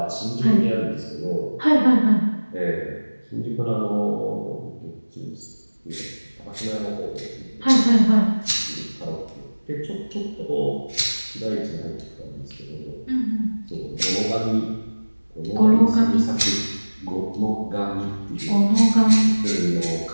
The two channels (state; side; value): inverted; both; correlation -1.00